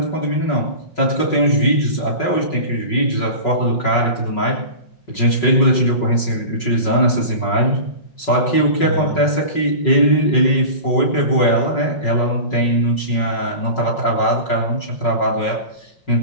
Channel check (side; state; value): right; late; 5.4 ms